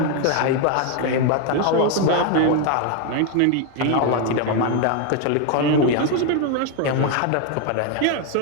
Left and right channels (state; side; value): different; both; correlation 0.01